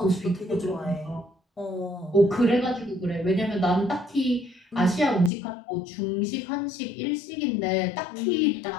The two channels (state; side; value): drops out; right; at 5.3 s